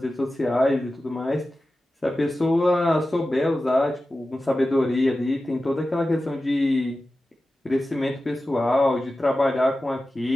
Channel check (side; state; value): both; normal; correlation 0.94